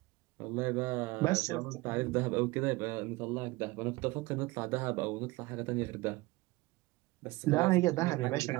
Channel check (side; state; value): left; quieter; 21.4 dB